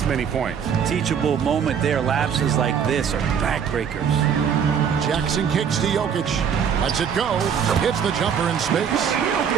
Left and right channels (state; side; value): quieter; left; 7.6 dB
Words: many points. Teachable moment there. Lapses like this are backbreakers. Jackson kicks to Jokic. Lets it go. Hits the jumper in space.